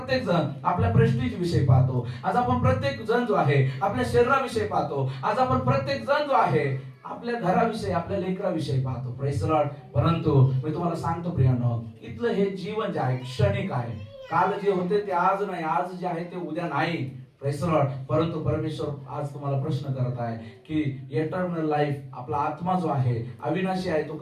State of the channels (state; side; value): identical; both; correlation 1.00